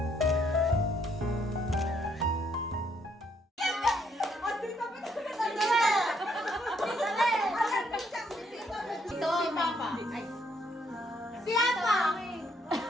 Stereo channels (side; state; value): both; normal; correlation 0.70